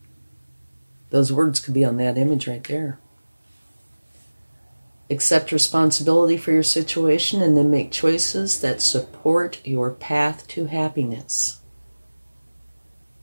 those words could be on that image right there. Accept responsibility for your situation and then make choices that support your path to happiness.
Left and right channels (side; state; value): both; inverted; correlation -1.00